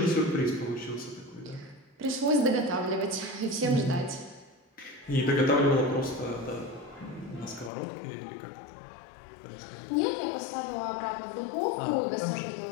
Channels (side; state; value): right; drops out; at 7.7 s